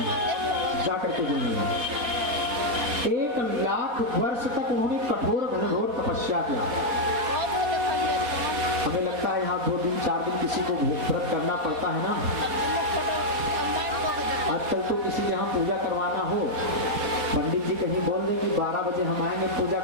जाकर के जल में 1,00,000 वर्ष तक उन्होंने कठोर घनघोर तपस्या किया। हमें लगता है यहाँ 2 दिन 4 दिन किसी को व्रत करना पड़ता है ना। आजकल तो किसी यहाँ पूजा करवाना हो, पंडित जी कहीं बोल दें कि 12 बजे हम आएंगे पूजा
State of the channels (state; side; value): late; left; 4.1 ms